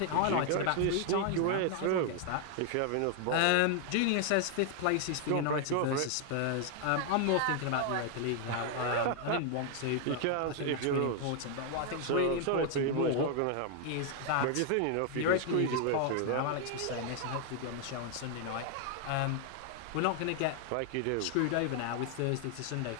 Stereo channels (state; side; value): different; both; correlation 0.00